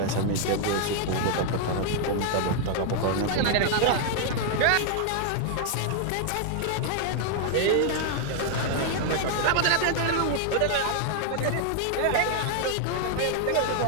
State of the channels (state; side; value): different; both; correlation 0.00